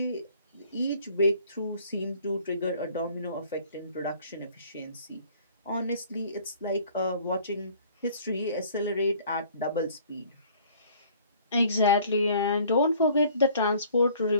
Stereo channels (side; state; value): both; inverted; correlation -0.55